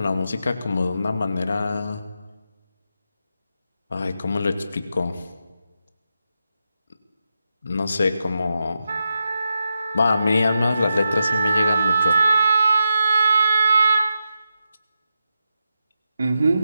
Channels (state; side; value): inverted; both; correlation -0.87